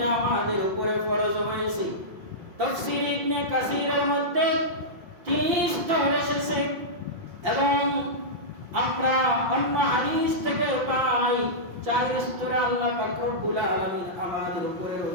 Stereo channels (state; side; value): late; left; 5.8 ms